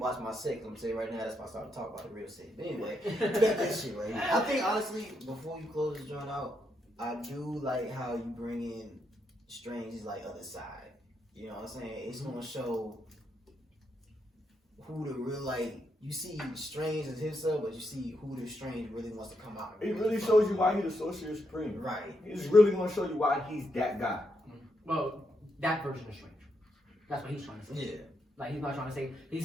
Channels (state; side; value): normal; both; correlation 0.80